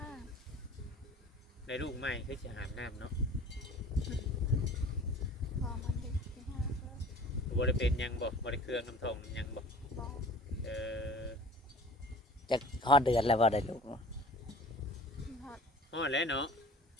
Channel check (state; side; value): normal; both; correlation 0.45